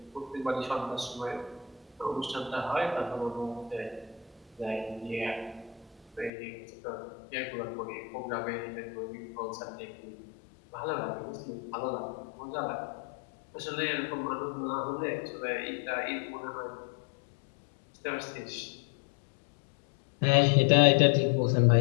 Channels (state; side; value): drops out; right; at 6.3 s